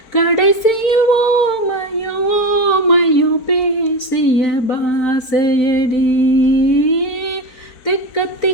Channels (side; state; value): right; late; 4.5 ms